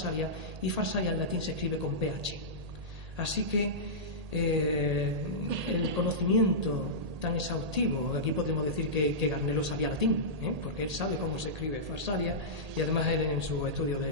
y Farsalia en latín se escribe con PH. Así que el conocimiento tan exhaustivo, aquí podemos decir que Garnelo sabía latín, porque él sabe cómo se escribe Farsalia, y además él en su estudio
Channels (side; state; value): left; late; 1.8 ms